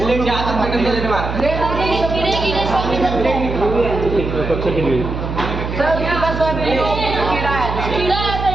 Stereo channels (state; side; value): noise; right; hum, 5 dB below the sound